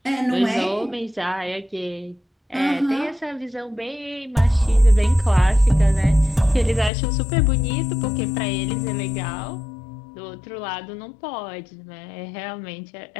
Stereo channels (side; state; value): right; drops out; at 6.9 s